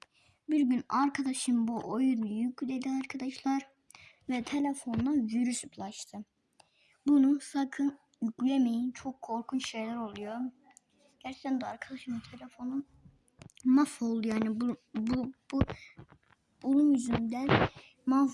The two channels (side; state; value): both; identical; correlation 1.00